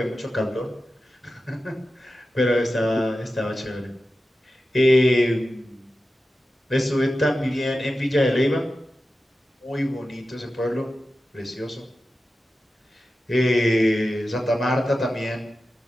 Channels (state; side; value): normal; both; correlation 0.93